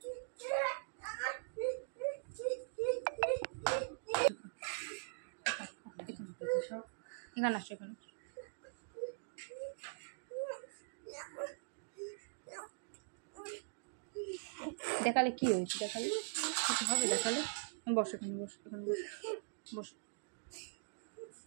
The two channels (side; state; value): left; silent; digital silence